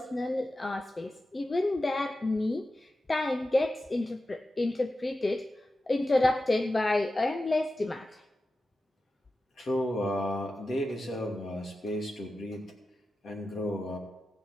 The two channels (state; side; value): normal; both; correlation 0.93